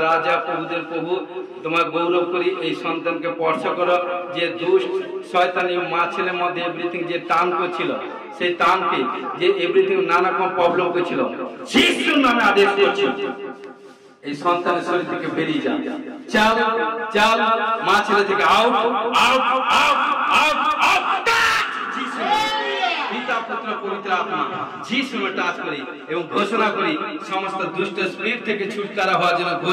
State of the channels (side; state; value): both; identical; correlation 1.00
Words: রাজা প্রভুদের প্রভু, তোমার গৌরব করি। এই সন্তানকে স্পর্শ করো, যে দুষ্ট শয়তানি মা ছেলের মধ্যে এভরিথিং যে টান করছিল, সেই টানকে যে এভরিথিং নানা রকম প্রবলেম করছিল, যিশুর নামে আদেশ করছি এই সন্তানের শরীর থেকে বেরিয়ে যাও। চাল চাল মা ছেলে থেকে out out out out out. পিতা পুত্র পবিত্র আত্মা যিশু নামে টাচ করি এবং ঘোষণা করি সমস্ত দুষ্ট স্পিরিট থেকে ছুটকারা হওয়ার জন্য